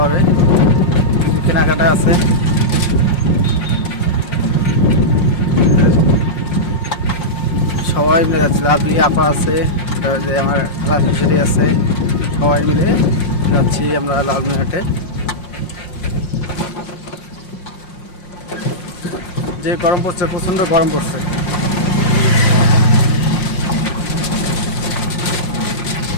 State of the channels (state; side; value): late; right; 5.6 ms